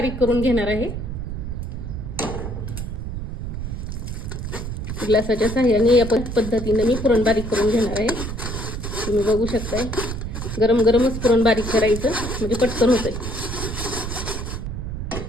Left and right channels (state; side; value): noise; right; rumble, 5 dB below the sound